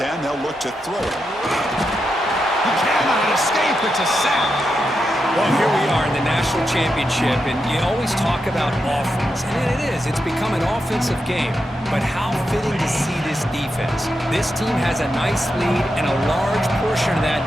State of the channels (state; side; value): normal; both; correlation 0.86